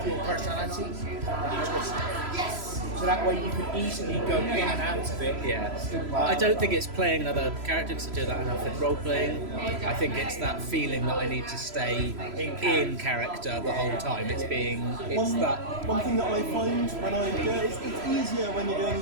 your personality and you twist it. So that way you can easily go in and out of it. Yeah, I don't think it's playing another character because I do that enough in role playing. I think it's that feeling that I need to stay in character the whole time. It's that. One thing that I find when I do it, it's easier when you're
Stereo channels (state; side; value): late; left; 3.0 ms